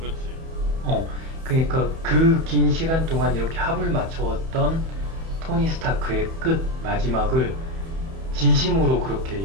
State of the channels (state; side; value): late; left; 31 ms